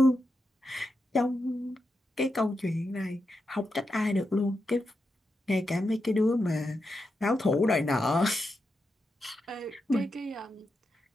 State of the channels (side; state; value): both; normal; correlation 0.87